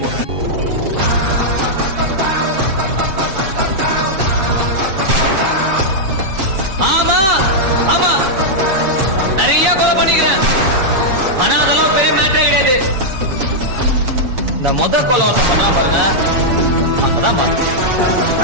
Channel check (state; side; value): late; left; 7.6 ms